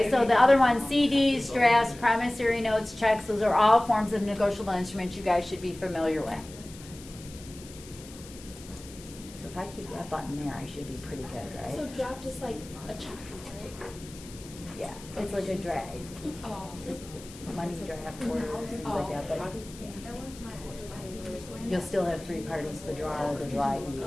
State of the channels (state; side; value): noise; left; hiss, 18 dB below the sound